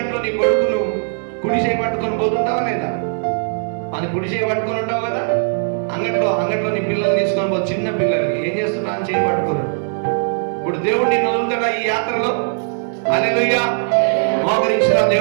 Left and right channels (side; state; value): left; silent; digital silence